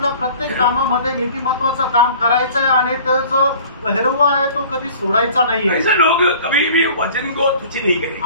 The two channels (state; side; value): inverted; both; correlation -0.47